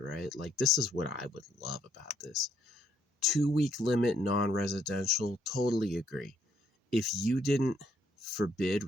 Like, this is what I would love about this. 2-week limit, non-residential, totally agree. If you didn't forbid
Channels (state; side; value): normal; both; correlation 0.70